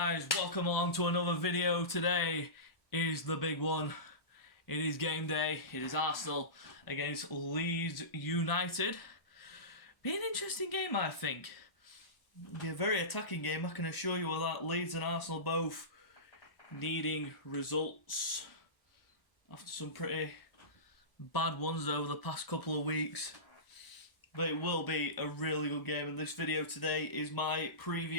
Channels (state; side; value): late; right; 1.0 ms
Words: Welcome along to another video. Today is the big one. It is game day. It is Arsenal against Leeds United. Be an interesting game, I think. Be a very attacking game, I can assure you of that. Leeds and Arsenal both needing results after some pretty bad ones over the past couple of weeks. But it will be a really good game, and this video today is my